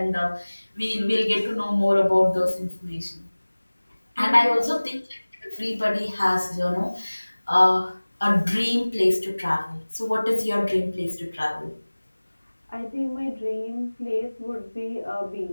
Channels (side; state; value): both; inverted; correlation -1.00